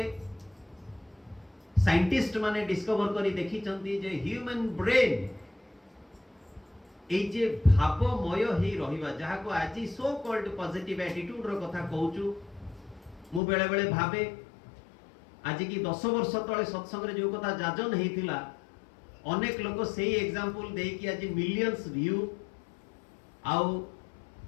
साइंटिस्ट माने डिस्कवर करी देखी चंदी जे ह्यूमन ब्रेन ए जे भावमय ही रहिबा जहा को आज सो कॉल्ड पॉजिटिव एटीट्यूड रो कथा कहूचु मु बेले बेले भाबे आज की 10 वर्ष तळे सत्संग रे जो कथा जाजन हेतिला अनेक लोक सेही एग्जांपल देई कि आज मिलियंस व्यू आउ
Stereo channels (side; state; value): right; drops out; at 13.4 s